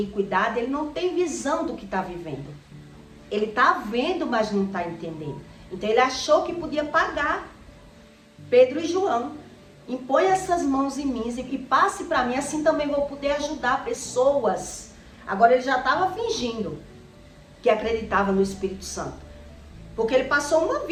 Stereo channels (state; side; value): identical; both; correlation 1.00